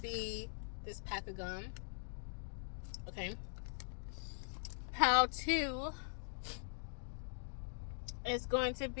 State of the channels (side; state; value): right; silent; digital silence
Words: this pack of gum. Okay, pal 2 is going to